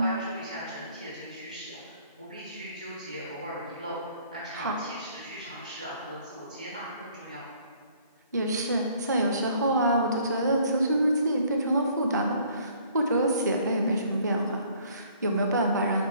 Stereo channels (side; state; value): both; inverted; correlation -0.59